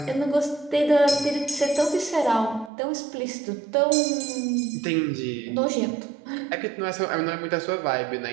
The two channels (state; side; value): drops out; left; at 2.7 s